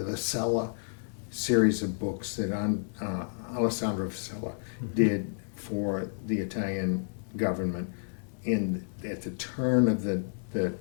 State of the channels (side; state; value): right; silent; 57 dB below the other